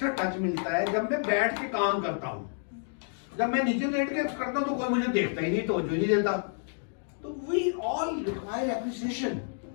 टच मिलता है जब मैं बैठ के काम करता हूँ। जब मैं नीचे लेट के करता हूँ तो कोई मुझे देखता ही नहीं, तवज्जो नहीं देता। तो we all require appreciation,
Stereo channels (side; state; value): right; silent; digital silence